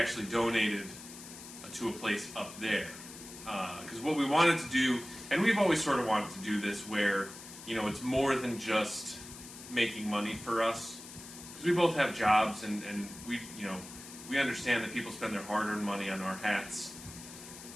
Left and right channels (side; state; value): left; noise; hiss, 14 dB below the sound